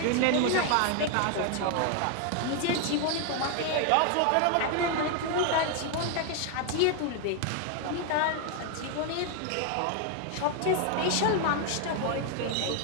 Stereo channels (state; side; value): different; both; correlation 0.01